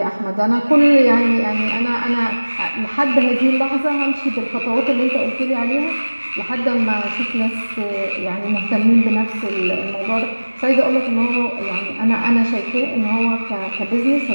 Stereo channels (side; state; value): both; inverted; correlation -1.00